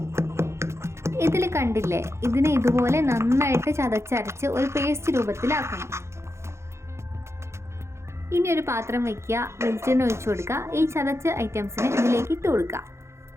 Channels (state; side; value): late; left; 0.13 ms